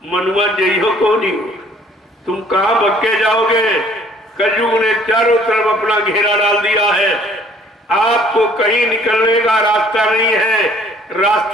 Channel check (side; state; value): both; normal; correlation 0.57